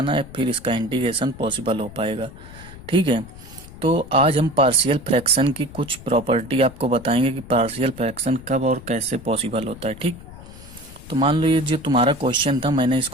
है फिर इसका इंटीग्रेशन पॉसिबल हो पाएगा। ठीक है। तो आज हम पार्शियल फ्रैक्शन की कुछ प्रॉपर्टी आपको बताएंगे कि पार्शियल फ्रैक्शन कब और कैसे पॉसिबल होता है। ठीक। तो मान लो ये जो तुम्हारा क्वेश्चन था, मैंने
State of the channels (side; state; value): left; noise; rumble, 17 dB below the sound